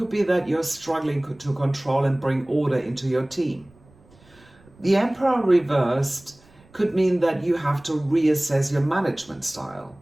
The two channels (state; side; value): noise; right; rumble, 28 dB below the sound